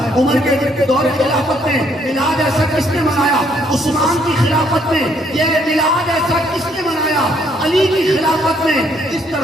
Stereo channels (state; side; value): normal; both; correlation 0.68